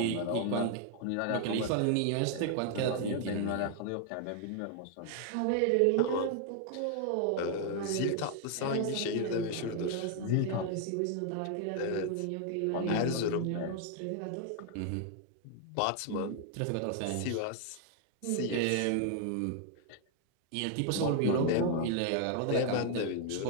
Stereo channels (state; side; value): different; both; correlation 0.00